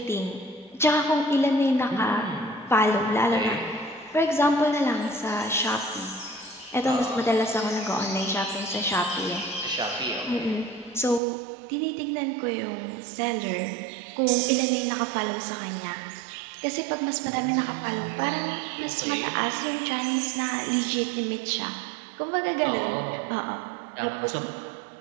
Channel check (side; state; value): left; drops out; at 11.2 s